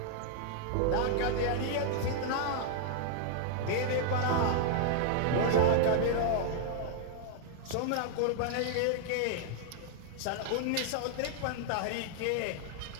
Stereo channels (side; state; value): both; different; correlation -0.01